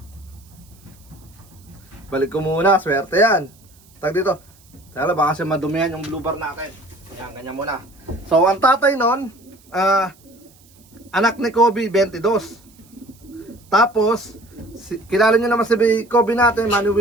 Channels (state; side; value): noise; right; hiss, 28 dB below the sound